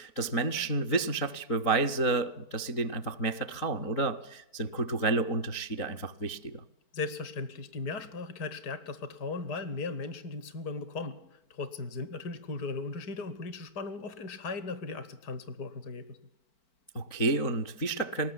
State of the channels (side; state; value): right; late; 4.5 ms